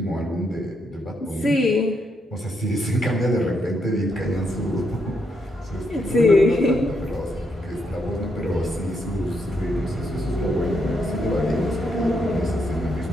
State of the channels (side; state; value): both; normal; correlation 0.78